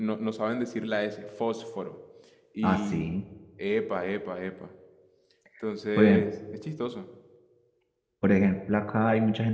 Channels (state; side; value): identical; both; correlation 1.00